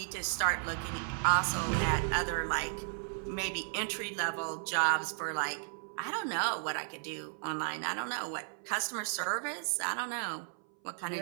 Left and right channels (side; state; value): left; silent; 55 dB below the other